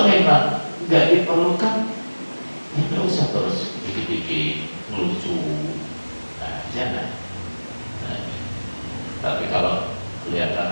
memang nggak diperlukan, ya nggak usah terus bikin lucu. Nah, jangan. Nah, tapi kalau kelihatan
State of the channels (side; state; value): both; inverted; correlation -1.00